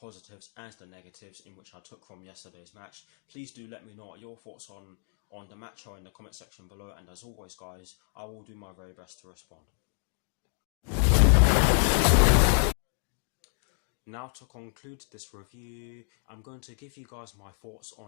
and the negatives in which I took from yesterday's match. Please do let me know your thoughts on the match or in the comment section below, and as always guys, I will do my very best to respond. Now, to conclude this review, I'm going to give you guys my thoughts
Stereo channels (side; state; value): right; silent; 58 dB below the other